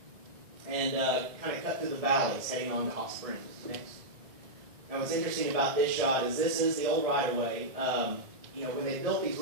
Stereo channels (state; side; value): late; left; 1.6 ms